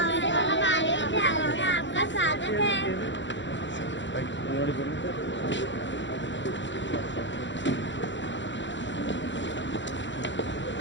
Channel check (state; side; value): late; right; 0.54 ms